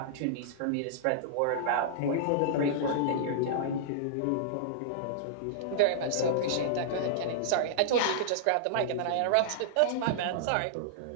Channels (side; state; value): both; different; correlation -0.02